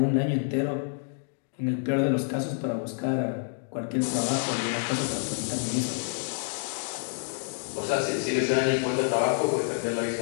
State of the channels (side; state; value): right; silent; digital silence